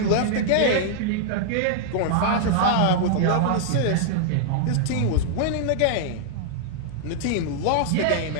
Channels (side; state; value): both; different; correlation -0.01